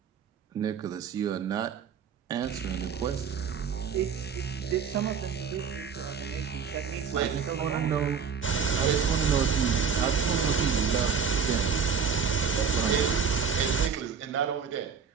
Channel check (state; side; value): quieter; left; 6.3 dB